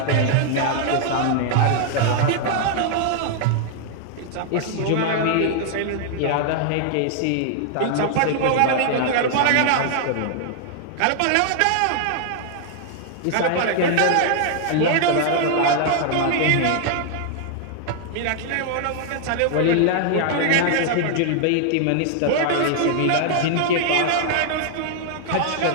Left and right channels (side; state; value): both; different; correlation 0.00